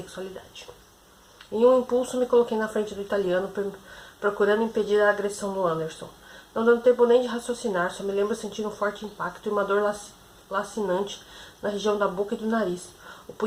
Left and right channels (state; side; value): identical; both; correlation 1.00